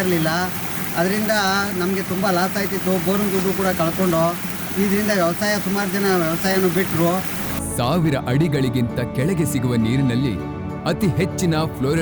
ಇರಲಿಲ್ಲ. ಅದರಿಂದ ನಮಗೆ ತುಂಬ ಲಾಸ್ ಆಯ್ತಿತ್ತು. ಬೋರಿನ ದುಡ್ಡು ಕೂಡ ಕಳ್ಕೊಂಡು ಇದರಿಂದ ಸುಮಾರು ಜನ ವ್ಯವಸಾಯನೂ ಬಿಟ್ಟರು. 1000 ಅಡಿಗಳಿಗಿಂತ ಕೆಳಗೆ ಸಿಗುವ ನೀರಿನಲ್ಲಿ ಅತಿ ಹೆಚ್ಚಿನ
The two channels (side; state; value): both; identical; correlation 1.00